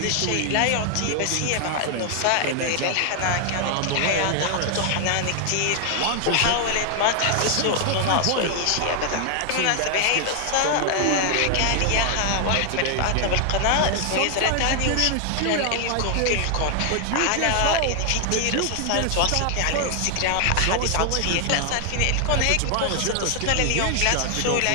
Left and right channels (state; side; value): different; both; correlation 0.00